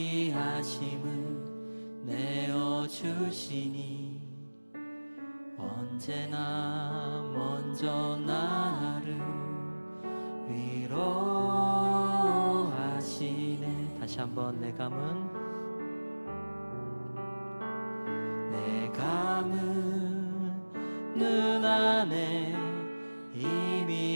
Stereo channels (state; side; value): inverted; both; correlation -1.00